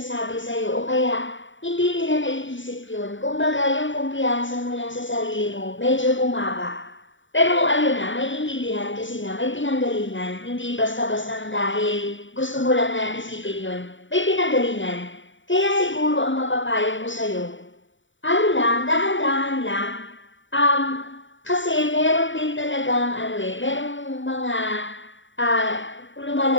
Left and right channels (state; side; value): late; right; 0.55 ms